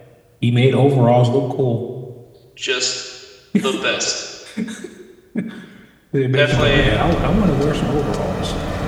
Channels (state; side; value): identical; both; correlation 1.00